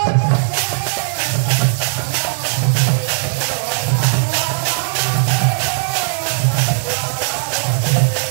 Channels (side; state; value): left; silent; digital silence